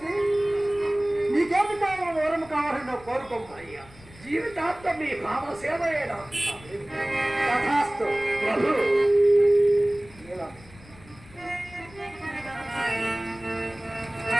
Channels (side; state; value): left; noise; rumble, 22 dB below the sound